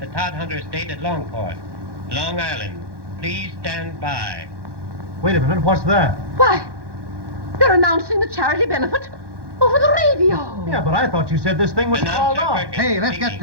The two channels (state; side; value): late; left; 1.1 ms